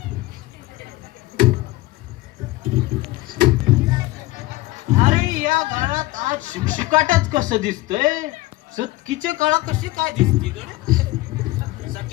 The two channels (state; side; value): quieter; right; 19.0 dB